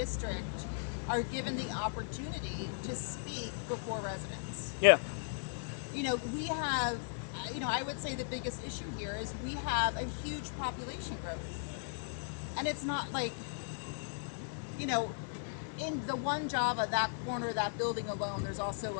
are given the opportunity to speak before residents. Yeah. You know, we have, you know, I would say the biggest issue here is we have a huge population growth. And it's not like, you know, in the one Java, that corner, that building alone, there's also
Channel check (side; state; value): right; silent; 53 dB below the other